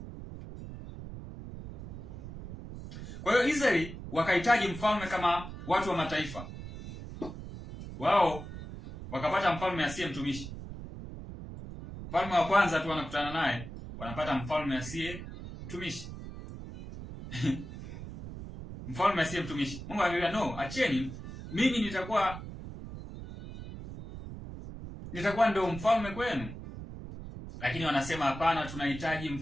Kwa hiyo Israeli wakahitaji mfalme kama watu wa mataifa, wao wakapata mfalme asiye mtumishi. Mfalme wa kwanza tu wanakutana naye wanapata mfalme asiye mtumishi. Mfalme asiye mtumishi. Mungu aliwaambia, no, acheni, mimi nitakuwa ndio mfalme kwenu. Lakini wanasema hapana, tunahitaji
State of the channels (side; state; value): right; noise; rumble, 11 dB below the sound